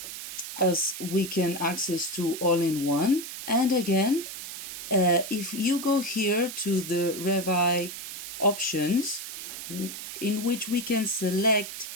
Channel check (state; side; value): noise; right; hiss, 9 dB below the sound